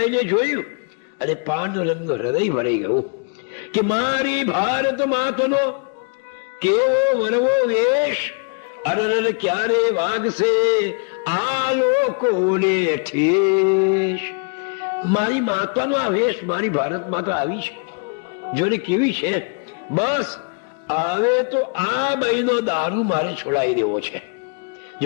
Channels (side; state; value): right; quieter; 36.9 dB